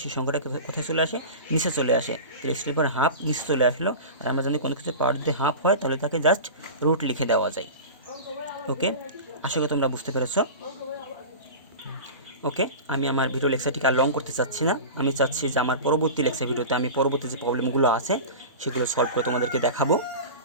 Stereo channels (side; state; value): both; inverted; correlation -0.30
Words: সেই সংখ্যাটা কোথায় চলে আসে, নিচে চলে আসে। তো x to the power half নিচে চলে আসলো, আর আমরা জানি কোনো কিছুর পাওয়ার যদি হাফ হয় তাহলে তাকে জাস্ট রুট লিখে দেওয়া যায়। ওকে, আশা করি তোমরা বুঝতে পেরেছ। ওকে, আমি আমার ভিডিও লেকচারটিকে আর লং করতে চাচ্ছি না। আমি চাচ্ছি যে আমার পরবর্তী লেকচার ভিডিওতে আমি পরবর্তী যে প্রবলেমগুলো আছে সেগুলো সলভ করে তোমাদেরকে দেখাবো।